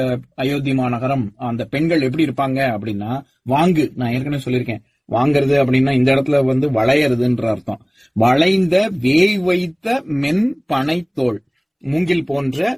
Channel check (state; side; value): identical; both; correlation 1.00